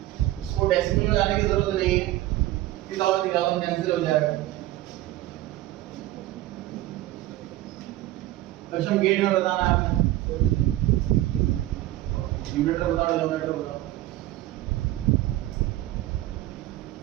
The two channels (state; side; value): quieter; left; 16.0 dB